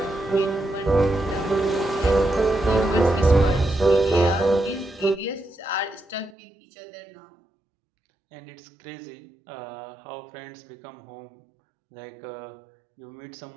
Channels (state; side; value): drops out; left; at 6.4 s